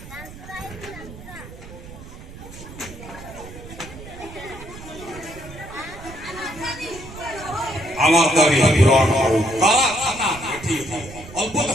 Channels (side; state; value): right; noise; rumble, 15 dB below the sound